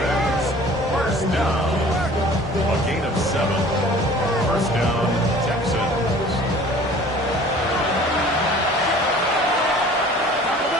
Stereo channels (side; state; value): both; normal; correlation 0.48